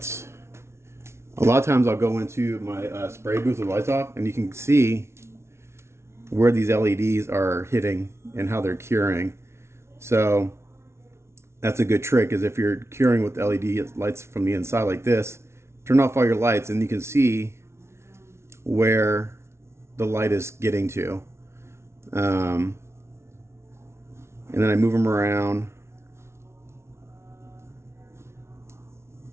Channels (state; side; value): late; left; 0.13 ms